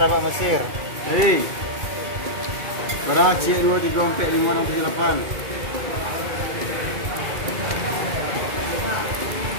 Mesir. Hei. Berapa cik 2 3 4 5 6 7 8.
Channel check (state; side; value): late; left; 2.3 ms